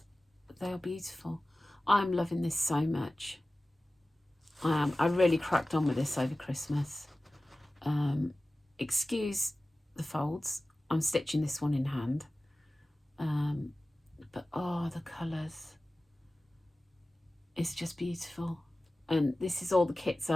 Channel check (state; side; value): normal; both; correlation 0.97